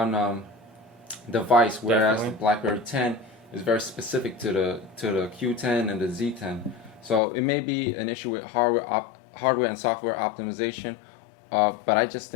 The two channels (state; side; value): drops out; right; at 7.2 s